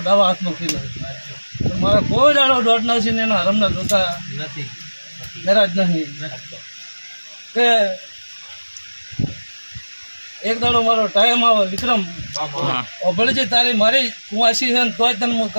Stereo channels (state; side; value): inverted; both; correlation -1.00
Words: ડાવા હાથનો ખીલો મારે કોઈ દાડો દોઢ નથી ને એના હરમના જોતા નથી મેરાજ નહીં કે એક દાડો મારો ટાઈમ આવે વિક્રમ ભલે તારી મારી કુવાસી છે ને તોય તને હું